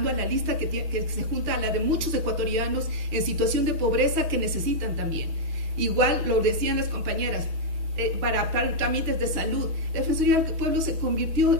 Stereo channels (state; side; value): late; left; 6.2 ms